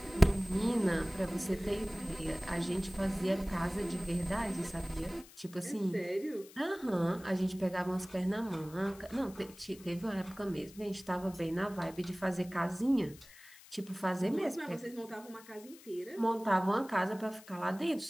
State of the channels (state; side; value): noise; left; hiss, 21 dB below the sound